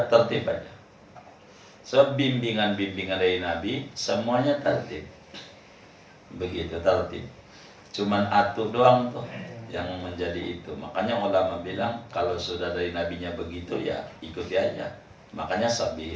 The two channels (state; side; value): identical; both; correlation 1.00